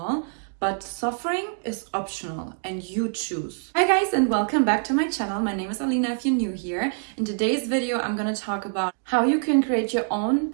but suffering is optional and you choose. Hi guys, and welcome back to my channel. My name is Alina if you're new here. In today's video, I'm gonna talk about how you can create your own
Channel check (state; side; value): silent; left; 62 dB below the other